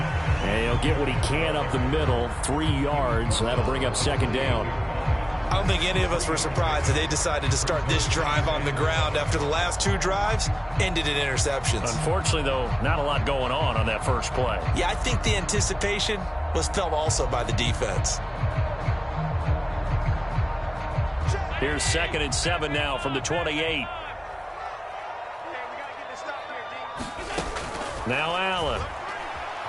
he'll get what he can up the middle, 3 yards. That'll bring up second down. I don't think any of us were surprised that they decided to start this drive on the ground after the last 2 drives ended in interceptions. Unfortunately, though, not a lot going on that first play. Yeah, I think the anticipation was felt also by the defense. Here's 2nd and 7 now from the 28. Now Allen.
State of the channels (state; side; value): identical; both; correlation 1.00